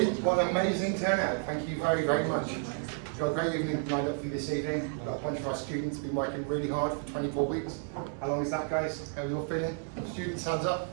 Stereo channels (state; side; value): silent; left; 57 dB below the other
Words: what an amazing turnout, thank you very, very much. We've got a great evening lined up for you this evening. We've got a bunch of our students been working really hard for 24 weeks. How long is that, guys? How are you all feeling? Students, hands up.